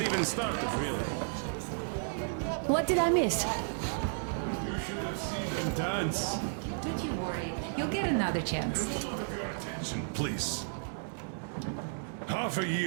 all the drinks already. What did I miss? You should have seen them dance. Don't you worry. You'll get another A chance. moment of your attention, please. Half a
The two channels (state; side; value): silent; left; digital silence